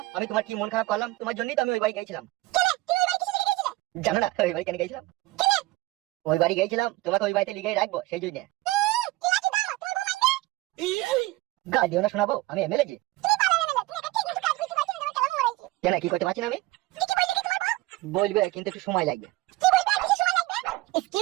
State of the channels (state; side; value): quieter; left; 19.5 dB